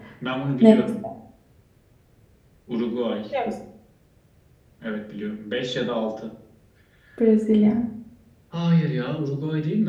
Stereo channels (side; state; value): both; identical; correlation 1.00